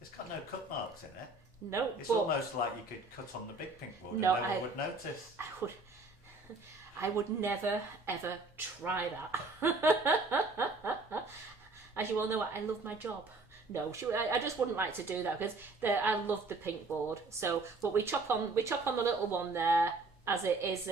got no cut marks in it. No, It's but almost like you could cut on the big pink board No, and no one would notice. I would never ever try that. As you all know, I love my job. No, I just wouldn't like to do that because I love the pink board. So, but we chop on the little one there, as it is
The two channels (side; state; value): left; quieter; 3.4 dB